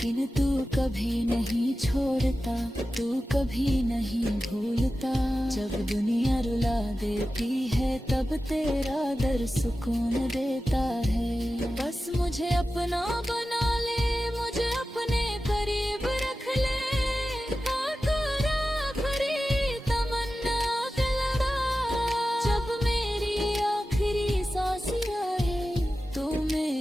तू कभी नहीं छोड़ता, तू कभी नहीं भूलता। जब दुनिया रुला देती है तब तेरा दर सुकून देता है। बस मुझे अपना बना ले, मुझे अपने करीब रख ले, आकर आखिरी तमन्ना दिलवा। जब मेरी आखिरी सांस आए तो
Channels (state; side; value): normal; both; correlation 0.94